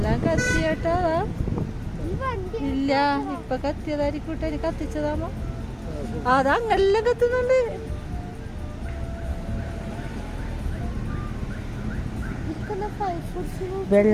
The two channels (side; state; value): both; identical; correlation 1.00